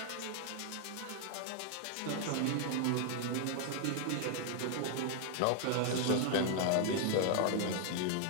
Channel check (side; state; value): both; different; correlation 0.00